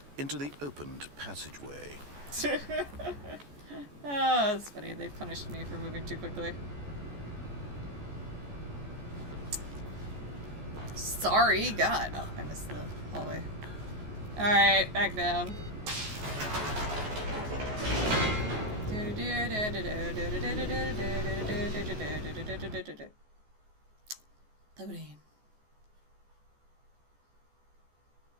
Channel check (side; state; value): left; late; 14 ms